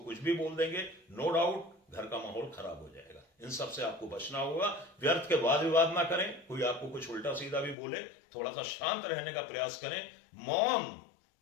कुछ भी बोल देंगे, नो डाउट घर का माहौल खराब हो जाएगा। इन सब से आपको बचना होगा। व्यर्थ के वाद विवाद ना करें। कोई आपको कुछ उल्टा सीधा भी बोले, थोड़ा सा शांत रहने का प्रयास करें। मौन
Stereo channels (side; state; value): right; drops out; at 7.8 s